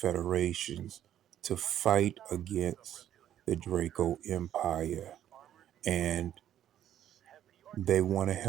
to fight against the Draco Empire. And they want to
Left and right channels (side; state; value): left; quieter; 11.1 dB